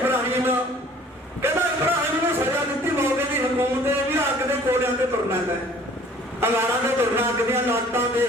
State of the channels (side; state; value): both; normal; correlation 0.53